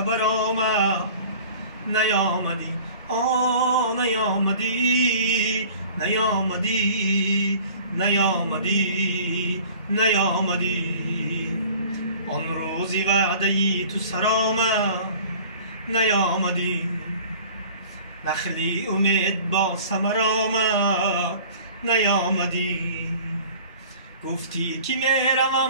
آمد نیامدی. نیامدی نیامدی نیامدی نیامدی. آن روزی وعده‌ای تو سرآمد نیامدی، نخلی امید با ثمر آمد نیامدی. گفتی که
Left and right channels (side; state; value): both; inverted; correlation -0.46